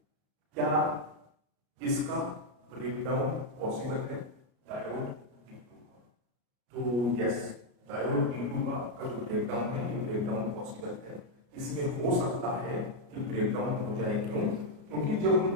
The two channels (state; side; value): late; left; 33 ms